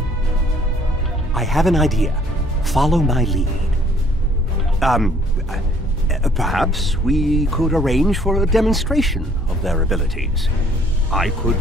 I have an idea. Follow my lead. Perhaps we could arrange for a demonstration of their abilities. I could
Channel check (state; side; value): normal; both; correlation 0.60